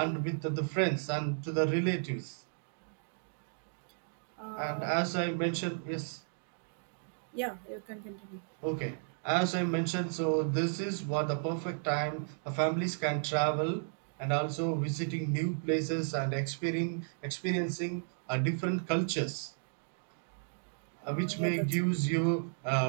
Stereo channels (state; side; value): silent; left; digital silence